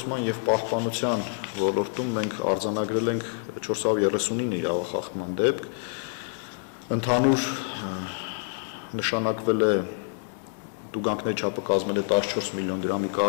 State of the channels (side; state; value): right; silent; digital silence